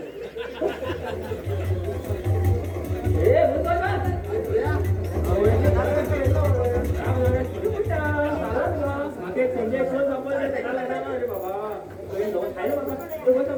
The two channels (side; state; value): both; identical; correlation 1.00